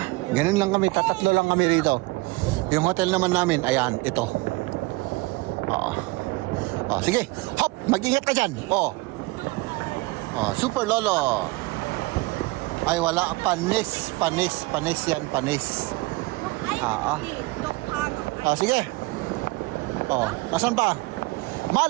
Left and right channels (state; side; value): quieter; left; 23.1 dB